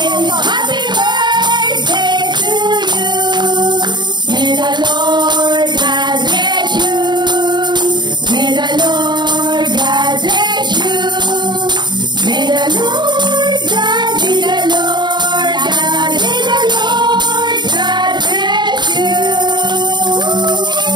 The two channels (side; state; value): left; late; 0.21 ms